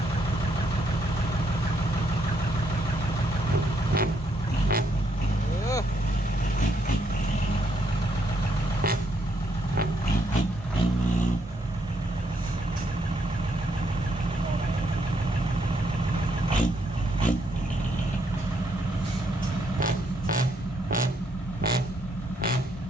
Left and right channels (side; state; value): both; normal; correlation 0.74